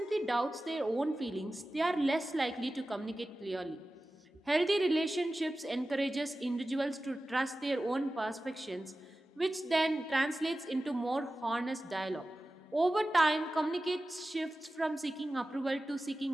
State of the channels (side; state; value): both; normal; correlation 0.95